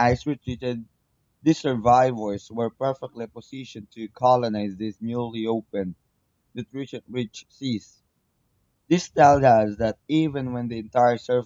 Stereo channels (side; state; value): both; identical; correlation 1.00